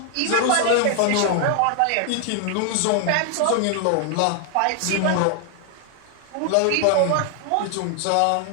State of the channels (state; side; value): different; both; correlation 0.00